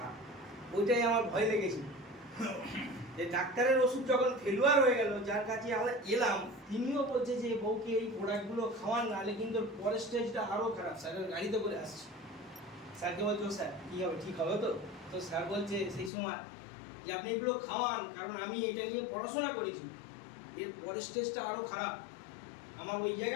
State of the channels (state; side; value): drops out; right; at 16.1 s